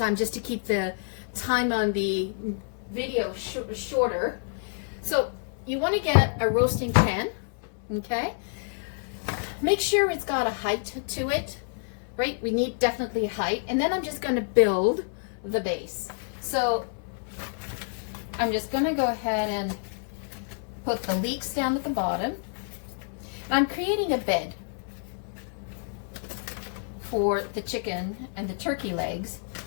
just to keep the time on the video shorter. So you want to get a roasting pan, okay? Make sure it's got a height to it, right? We need definitely a height. And then I'm just going to build the base. So I'm just going to go ahead and put the leeks down at the bottom. And I'm creating a bed for the chicken and the turkey legs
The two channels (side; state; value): right; silent; 58 dB below the other